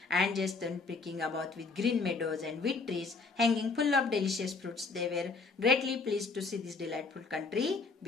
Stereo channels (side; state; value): right; quieter; 4.2 dB